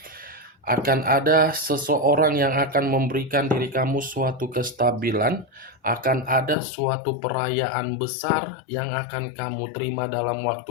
Akan ada seseorang yang akan memberikan diri kamu suatu kestabilan, akan ada suatu perayaan besar yang akan kamu terima dalam waktu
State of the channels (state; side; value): drops out; right; at 6.6 s